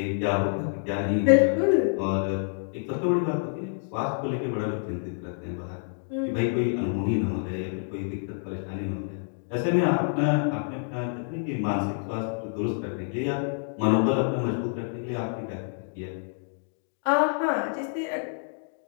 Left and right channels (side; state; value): right; silent; digital silence